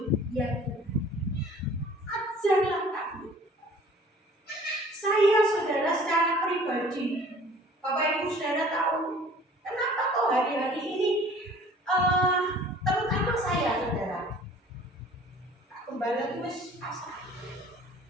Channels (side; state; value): both; normal; correlation 0.50